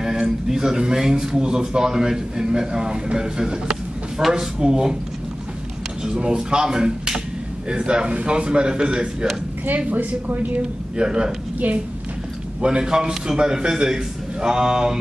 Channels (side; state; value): both; normal; correlation 0.96